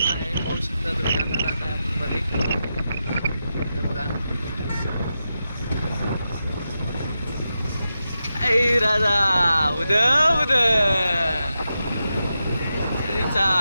आहे. पाहू शकता तुम्ही आता जात आहे आपण मध्ये. हे बघा ऐ राजा उद उद सरीचा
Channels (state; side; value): inverted; both; correlation -0.89